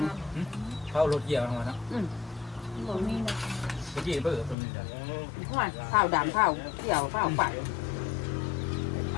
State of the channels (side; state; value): right; drops out; at 4.5 s